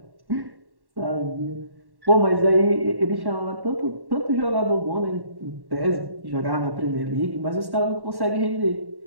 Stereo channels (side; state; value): left; late; 1.1 ms